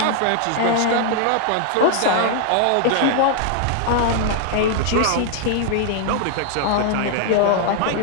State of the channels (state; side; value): different; both; correlation 0.00